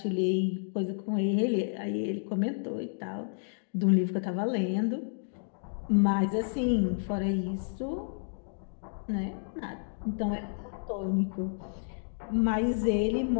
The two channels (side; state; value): right; silent; digital silence